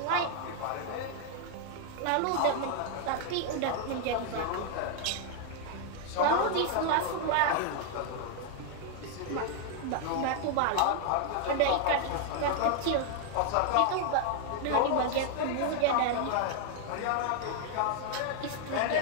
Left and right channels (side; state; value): both; different; correlation 0.00